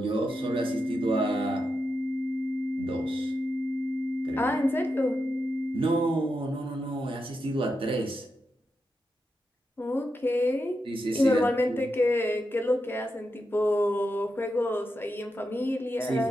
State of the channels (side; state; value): both; normal; correlation 0.87